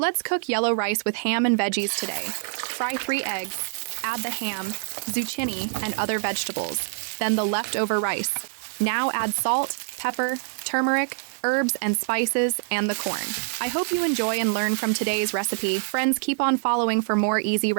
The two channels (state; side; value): silent; left; digital silence